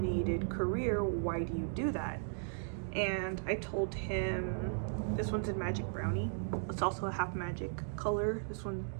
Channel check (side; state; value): left; silent; digital silence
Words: career, why do you do that? And I told him, this one's in magic brownie, it's also a half magic color. This one